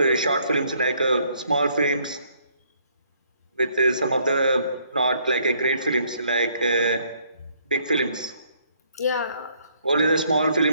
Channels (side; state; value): both; inverted; correlation -0.67